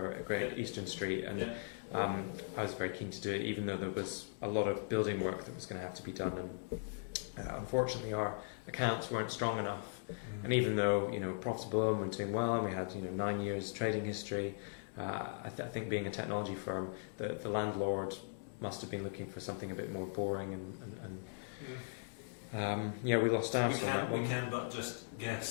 a Great Eastern Street, and I was very keen to do it, even though there was a lot of building work that was going to have to be done, and unfortunately our accounts weren't strong enough. And even though profitable and we're doing well, and we had 9 years trading history, I think being a technology firm, the landlord must have been looking for something a bit more boring, and we lost out. We can but just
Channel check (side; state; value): right; silent; digital silence